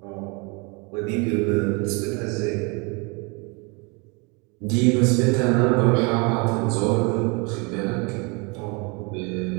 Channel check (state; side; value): quieter; left; 30.4 dB